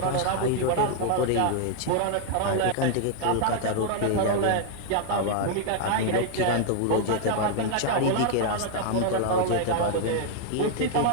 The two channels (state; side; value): different; both; correlation 0.00